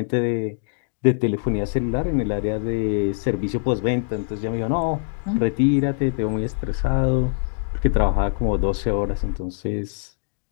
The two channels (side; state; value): right; silent; digital silence